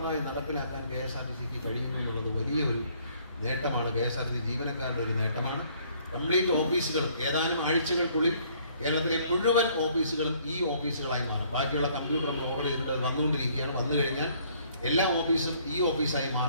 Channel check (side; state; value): both; inverted; correlation -0.62